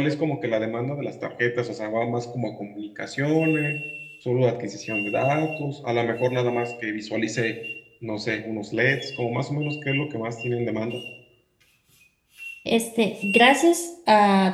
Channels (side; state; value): both; identical; correlation 1.00